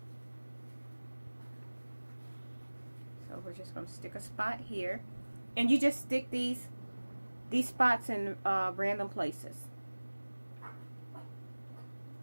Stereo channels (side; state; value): both; inverted; correlation -1.00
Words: So we're just going to stick a spot here. And you just stick these spots in random places.